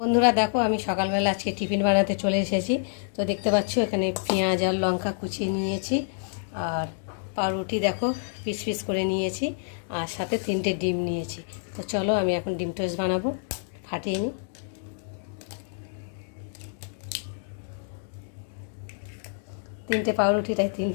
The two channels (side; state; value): right; silent; digital silence